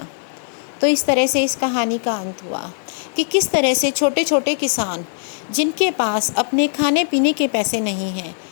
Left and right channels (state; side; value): silent; right; digital silence